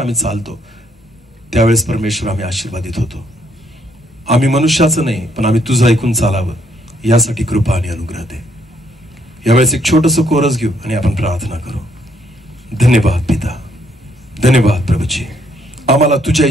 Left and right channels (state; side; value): normal; both; correlation 0.70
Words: चालतो, त्यावेळेस परमेश्वर आम्ही आशीर्वादित होतो. आम्ही मनुष्याचं नाही, पण आम्ही तुझं ऐकून चालावं, यासाठी कृपा आणि अनुग्रह दे. यावेळेस एक छोटंसं कोरस घेऊ आणि आपण प्रार्थना करू. धन्यवाद पिता. धन्यवाद प्रभूजी. आम्हाला तुझ्या